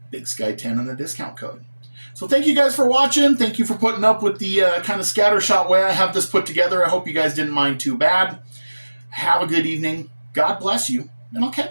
Big Sky 10 in the discount code. So thank you guys for watching. Thank you for putting up with the kind of scattershot way I have this put together. I hope you guys didn't mind too bad. Have a good evening. God bless you, and I'll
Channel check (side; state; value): both; inverted; correlation -1.00